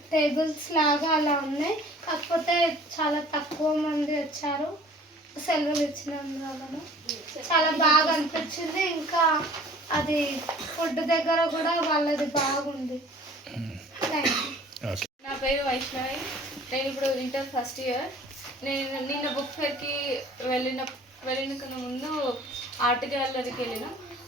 టేబుల్స్ లాగా అలా ఉన్నాయి, కాకపోతే చాలా తక్కువ మంది వచ్చారు సెలవులు ఇచ్చినందువలన. చాలా బాగా అనిపించింది. ఇంకా అది ఫుడ్ దగ్గర కూడా వాళ్ళది బాగుంది. Thank you. నా పేరు వైష్ణవి. నేను ఇప్పుడు ఇంటర్ ఫస్ట్ ఇయర్. నేను నిన్న బుక్ ఫేర్కి వెళ్ళిన ముందు ఆర్ట్ గ్యాలరీకి వెళ్ళిన.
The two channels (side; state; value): both; normal; correlation 0.50